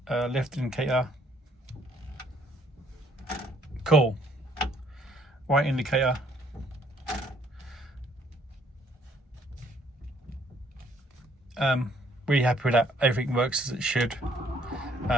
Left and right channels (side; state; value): both; normal; correlation 0.64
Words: left indicator. Cool. Right indicator. Really happy with that. Everything works as it should.